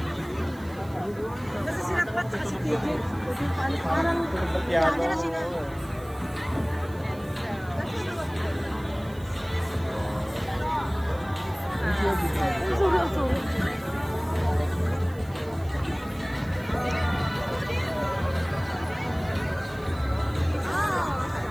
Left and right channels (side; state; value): right; noise; hiss, 24 dB below the sound